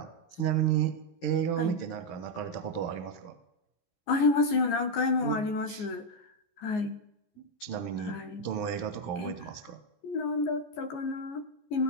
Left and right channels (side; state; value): right; late; 14 ms